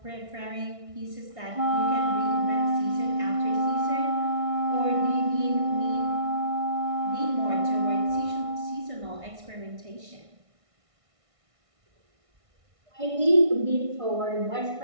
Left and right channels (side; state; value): left; late; 1.6 ms